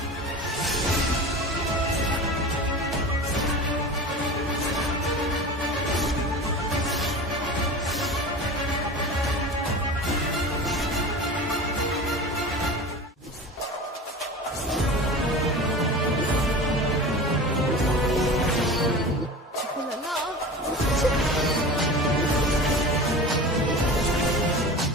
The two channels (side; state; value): both; normal; correlation 0.33